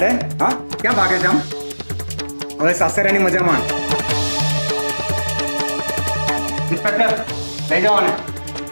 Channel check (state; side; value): inverted; both; correlation -1.00